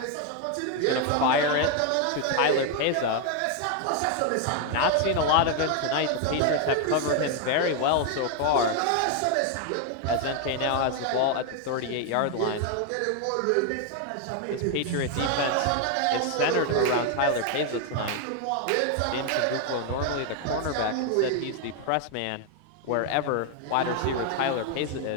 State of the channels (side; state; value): both; different; correlation 0.01